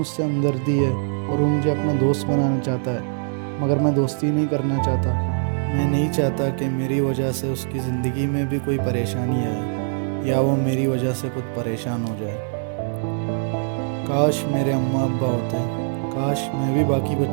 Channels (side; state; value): left; silent; 60 dB below the other